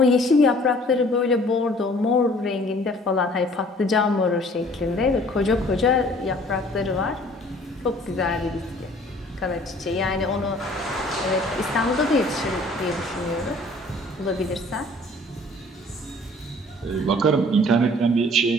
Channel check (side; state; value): both; normal; correlation 0.53